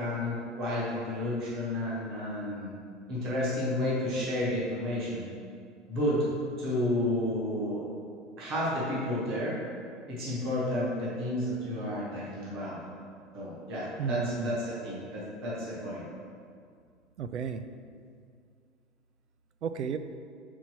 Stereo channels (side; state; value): both; normal; correlation 0.32